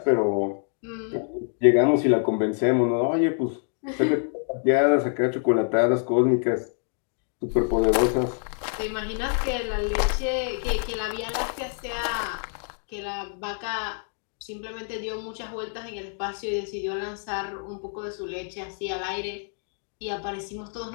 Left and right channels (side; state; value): right; silent; 57 dB below the other